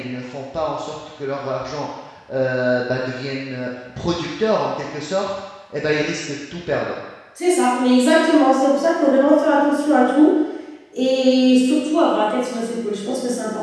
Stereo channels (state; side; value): identical; both; correlation 1.00